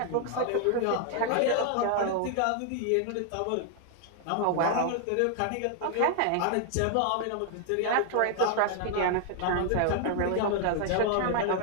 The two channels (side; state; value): both; different; correlation 0.00